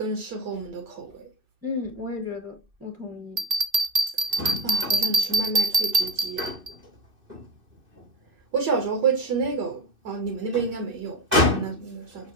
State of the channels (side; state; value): left; late; 2.6 ms